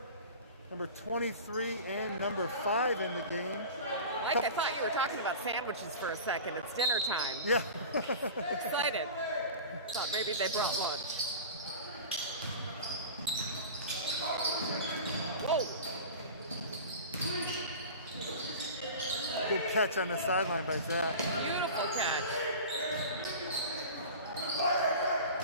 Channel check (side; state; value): both; inverted; correlation -0.34